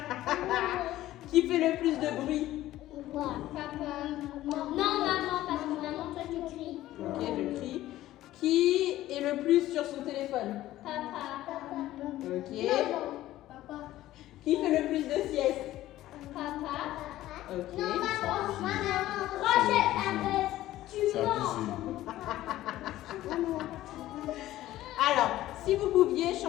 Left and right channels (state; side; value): quieter; right; 14.9 dB